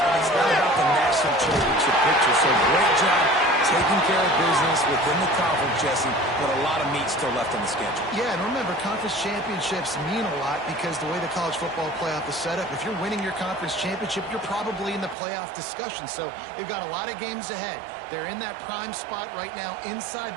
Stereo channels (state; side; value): drops out; left; at 15.2 s